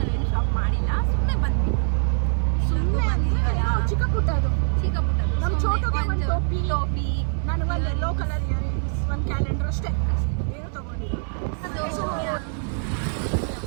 ನಾವೇನು ಶಾಪ್ ಮಾಡಿಲ್ಲ, ಸುಮ್ಮನೆ ಬಂದ್ವಿ. ಚಿಕ್ಕ ಪುಟ್ಟ ಅದು ನಮ್ಮ ಚೋಟುಗೆ ಒಂದು ಟೋಪಿ, ನನಗೆ ಒಂದು ಯೆಲ್ಲೋ ಕಲರ್ ಇಯರಿಂಗ್ಸ್, ಒಂದು ಕ್ಯಾಲೆಂಡರ್ ಅಷ್ಟೇ, ಏನು ತಗೊಂಡಿಲ್ಲ.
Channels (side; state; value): left; silent; 63 dB below the other